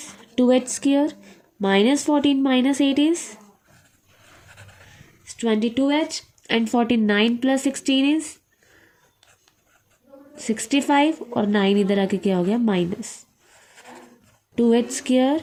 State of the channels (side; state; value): both; identical; correlation 1.00